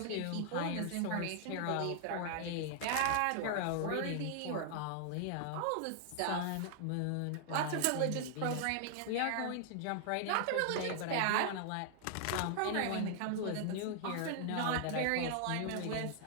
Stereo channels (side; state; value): both; different; correlation 0.00